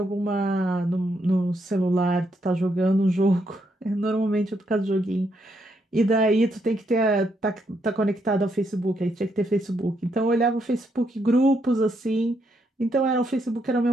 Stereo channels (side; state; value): both; normal; correlation 0.77